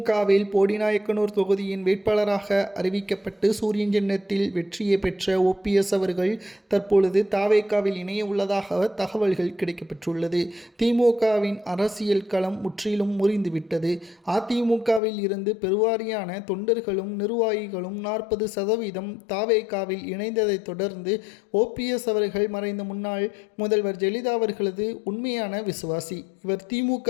போடிநாயக்கனூர் தொகுதியின் வேட்பாளராக அறிவிக்கப்பட்டு சூரியன் சின்னத்தில் வெற்றியை பெற்ற ஓபிஎஸ் அவர்கள் தற்பொழுது தாவேகாவில் இணைய உள்ளதாக தகவல்கள் கிடைக்கப்பெற்றுள்ளது. திமுகவின் அரசியல் களம் முற்றிலும் முறிந்துவிட்டது. அதிமுகவில் இருந்து பெருவாரியான தொண்டர்களும் நிர்வாகிகளும் 40% தாவேகாவில் இணைந்ததை தொடர்ந்து ஓபிஎஸ் அவர்கள் மறைந்த முன்னாள் முதல்வர் ஜெயலலிதா அவர்களது உண்மையான விசுவாசி. இவர்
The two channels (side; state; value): right; drops out; at 15.0 s